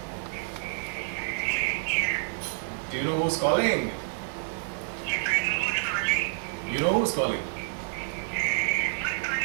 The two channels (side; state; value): left; silent; 59 dB below the other